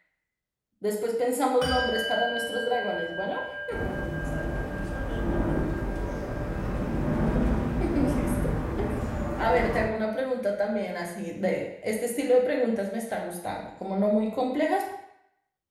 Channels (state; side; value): identical; both; correlation 1.00